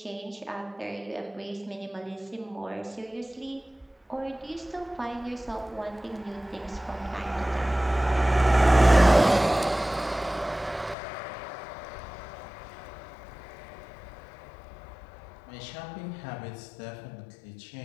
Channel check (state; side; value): drops out; right; at 11.0 s